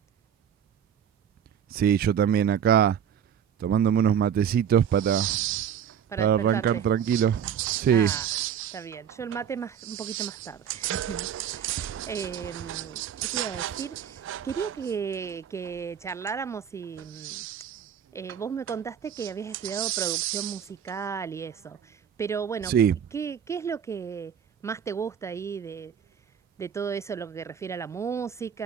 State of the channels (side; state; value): left; quieter; 8.6 dB